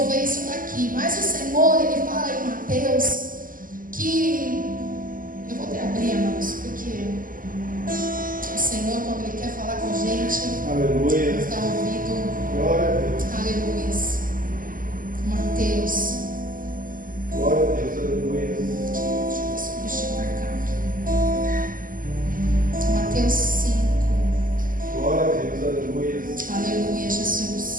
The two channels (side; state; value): left; late; 0.41 ms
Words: isso daqui. Mas o Senhor, Ele fala em Mateus que... eu vou até abrir, irmãos, porque o Senhor, quando Ele quer falar com a gente, aleluia, nos dá ouvido. Glória a Deus. Aleluia. Mateus. Glória a Deus, aleluia. Deixa eu marcar aqui. Mateus 5. Glória a Deus, aleluia. Aleluia,